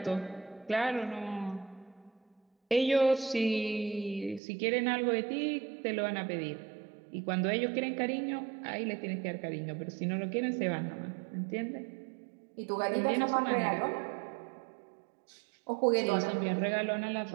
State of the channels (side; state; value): left; drops out; at 4.4 s